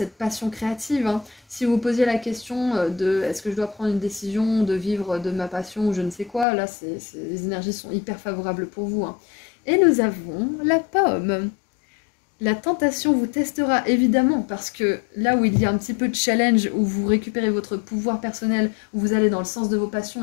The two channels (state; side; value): drops out; right; at 6.5 s